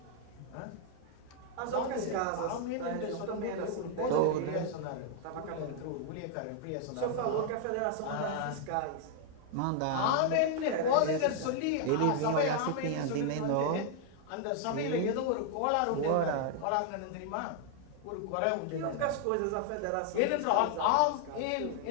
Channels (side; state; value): both; different; correlation 0.00